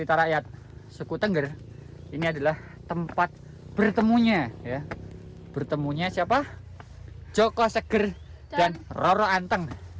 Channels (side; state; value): both; identical; correlation 1.00